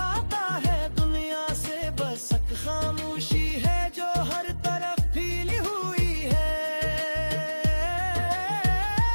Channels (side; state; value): both; inverted; correlation -1.00